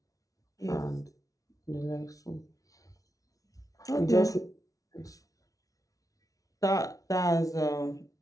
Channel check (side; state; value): right; late; 0.17 ms